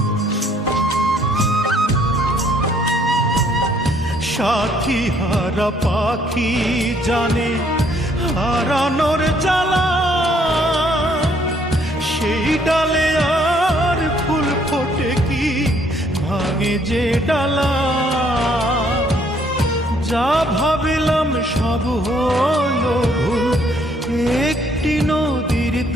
সাথী হারা পাখি জানে হারানোর জ্বালা, সেই ডালে আর ফুল ফোটে কি ভাঙে যে ডালা। যা ভাবিলাম সব হলো ভুল, একটি নদীর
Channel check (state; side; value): normal; both; correlation 0.65